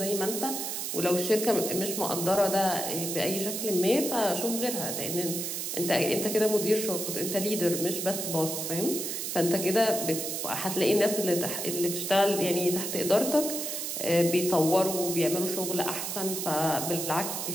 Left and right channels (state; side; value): noise; right; hiss, 3 dB below the sound